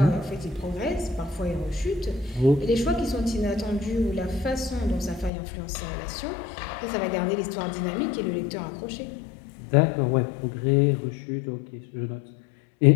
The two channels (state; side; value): drops out; right; at 5.3 s